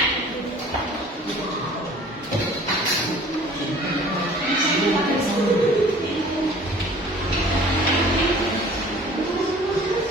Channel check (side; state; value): both; normal; correlation 0.49